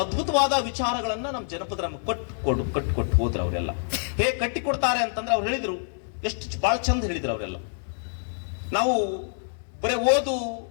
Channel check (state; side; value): silent; right; 61 dB below the other